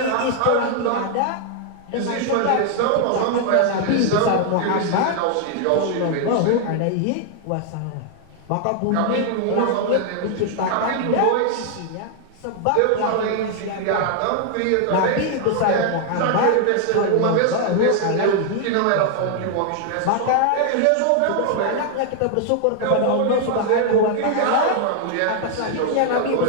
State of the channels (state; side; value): different; both; correlation 0.00